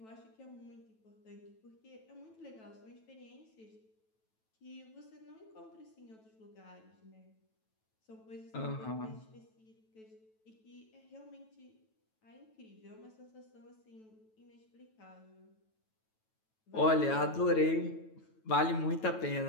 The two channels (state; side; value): late; right; 9.1 ms